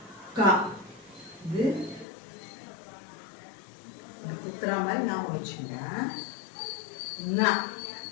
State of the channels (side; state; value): right; drops out; at 2.1 s